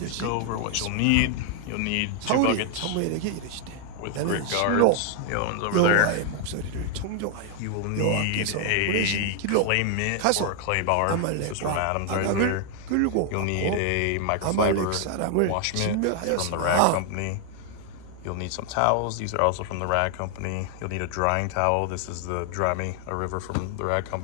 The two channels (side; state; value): both; different; correlation 0.00